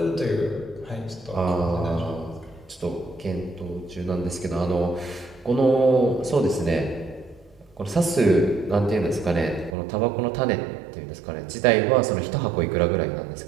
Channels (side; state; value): left; drops out; at 9.8 s